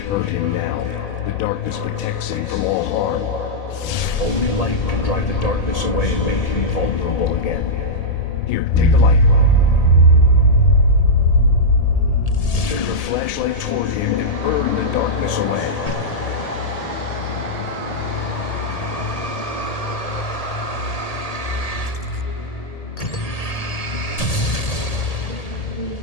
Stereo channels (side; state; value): right; late; 1.8 ms